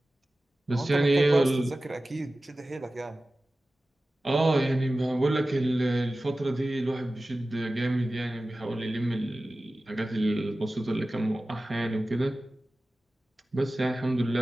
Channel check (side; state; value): both; normal; correlation 0.96